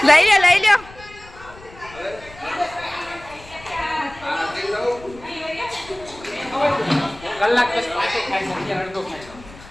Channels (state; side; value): noise; left; rumble, 20 dB below the sound